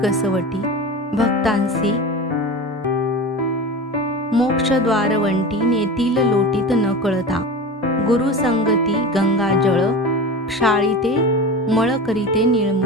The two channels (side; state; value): both; normal; correlation 0.30